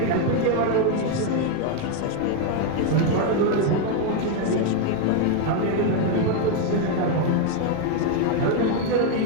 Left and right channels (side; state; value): both; different; correlation 0.01